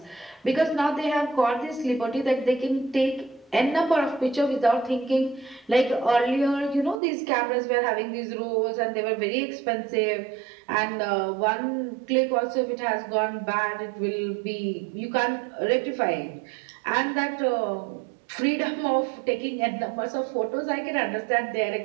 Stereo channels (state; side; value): drops out; left; at 7.0 s